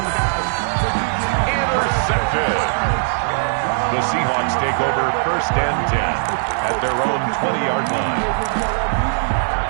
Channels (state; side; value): silent; left; digital silence